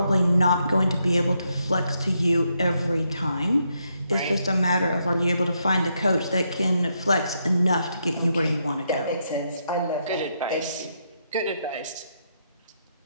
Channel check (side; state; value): both; inverted; correlation -0.79